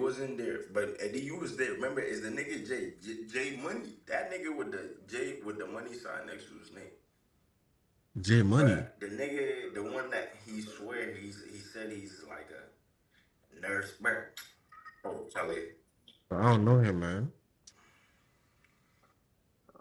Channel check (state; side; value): identical; both; correlation 1.00